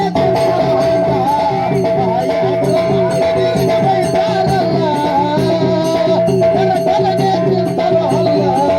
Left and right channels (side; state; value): both; identical; correlation 1.00